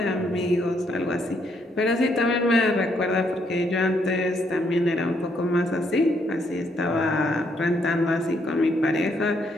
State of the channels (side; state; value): both; normal; correlation 0.73